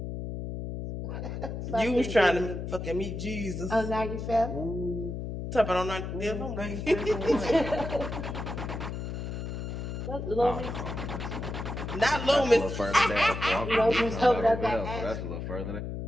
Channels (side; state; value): left; noise; hum, 5 dB below the sound